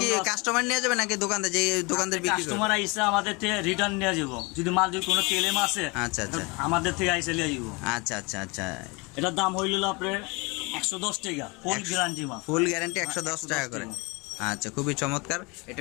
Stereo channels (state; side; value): quieter; right; 27.6 dB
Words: কি কাস্টমার নিয়ে যাবে নাকি দোকানদার? যে দোকানদার বিক্রি করে? কাস্টমার আইসা আমাদের থেকে রিটার্ন নিয়ে যাব। যদি মাল যদি কোনো কেলেম আছে, আচ্ছা আচ্ছা আমাদের থেকে আইসা নিয়ে যাব। আচ্ছা আচ্ছা আচ্ছা, এটার দাম হইল আপনার 110 টাকা, ফুল গ্যারান্টি মাল। ফুল গ্যারান্টি 110 টাকা করে। আচ্ছা, খুবই চমৎকার।